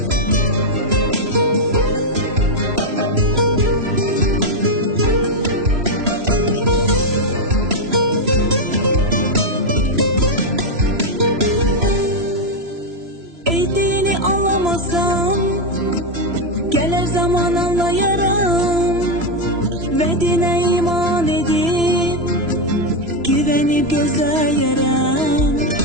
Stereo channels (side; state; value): left; late; 3.0 ms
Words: Gelir zaman anlayarım ve dine iman edip güvenip gözleyerem.